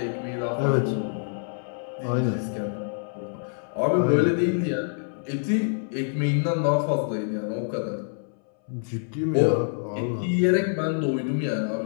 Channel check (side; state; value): right; silent; 60 dB below the other